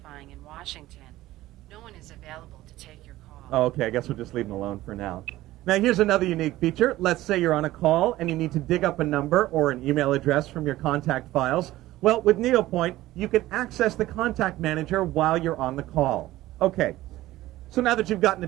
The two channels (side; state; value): left; quieter; 16.2 dB